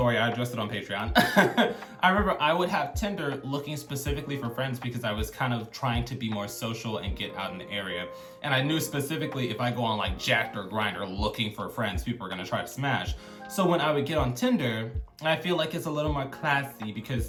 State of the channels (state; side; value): identical; both; correlation 1.00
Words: I addressed it on Patreon. I remember I would have Tinder looking specifically for friends because I was kind of trying to be more social and get out in the area. And I knew specifically if I go on like Jack'd or Grindr looking for friends, people are gonna try to smash. So when I would get on Tinder, I feel like it's a little more classy